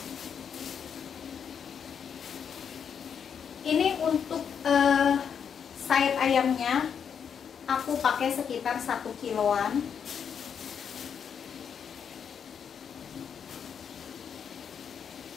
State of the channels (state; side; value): quieter; right; 7.4 dB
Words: Ini untuk sayap ayamnya aku pakai sekitar 1 kiloan.